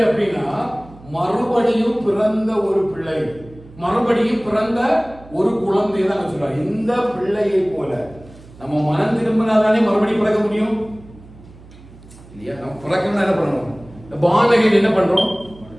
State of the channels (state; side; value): noise; right; hum, 21 dB below the sound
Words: அப்படின்னா, மறுபடியும் பிறந்த ஒரு பிள்ளை, மறுபடியும் பிறந்த ஒரு குழந்தையை தான் சொல்றாரு. இந்த பிள்ளையை போல நம்ம மனம் திரும்பினாதானே மறுபடியும் பிறக்க முடியும் இல்லையா? நம்ம பிறக்கணும்னா என்ன பண்ணணும்? இந்த பாலகன் என்ன பண்றோம்?